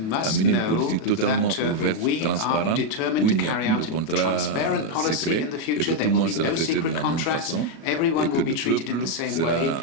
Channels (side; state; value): right; late; 37 ms